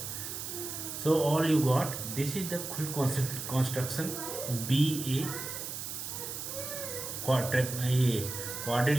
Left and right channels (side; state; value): right; noise; hiss, 6 dB below the sound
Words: So all you got, this is the full construction. BA